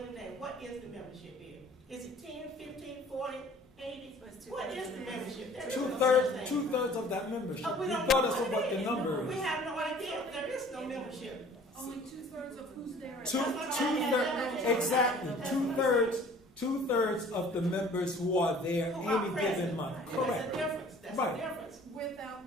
day? What is the membership here? Is it 10, 15, 40, 80? What is the membership? There is no such thing. 2/3 of that membership, We don't regardless know of what the is. number We is. have no idea. There is no membership. Only 2/3 of who's there. Exactly. Two-thirds of the members who are there any given month. Correct. That's a difference. That's Right. a difference. without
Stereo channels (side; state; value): both; normal; correlation 0.51